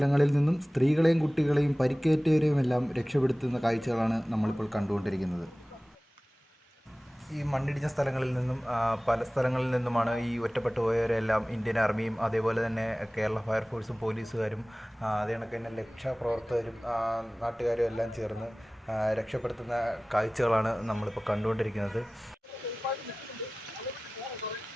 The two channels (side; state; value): both; normal; correlation 0.98